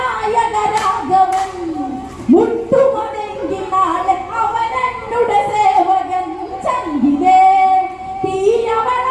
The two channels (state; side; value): identical; both; correlation 1.00